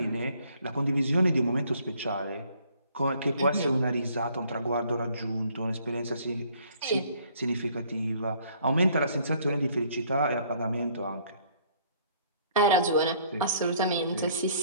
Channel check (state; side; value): inverted; both; correlation -0.61